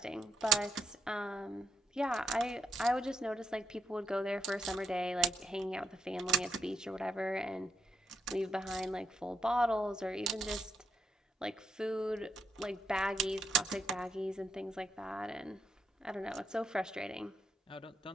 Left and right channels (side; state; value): both; normal; correlation 0.80